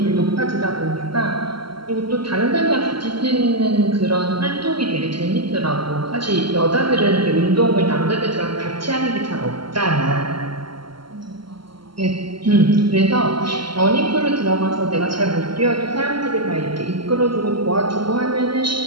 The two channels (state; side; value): late; left; 0.73 ms